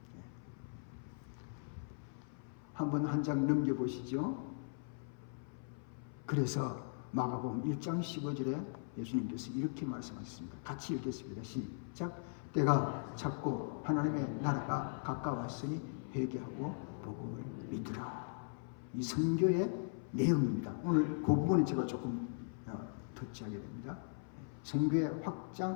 한번 한 장 넘겨보시죠. 그래서 마가복음 1장 15절에 예수님께서 이렇게 말씀하셨습니다. 같이 읽겠습니다. 시작. 때가 찼고 하나님의 나라가 가까웠으니 회개하고 복음을 믿으라. 이 선교의 내용입니다. 오늘 그 부분을 제가 조금 터치하게 됩니다. 선교의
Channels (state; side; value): silent; right; 52 dB below the other